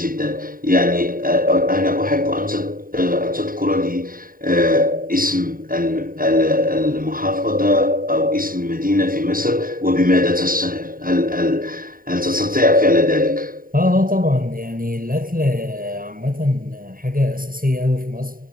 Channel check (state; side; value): late; left; 0.41 ms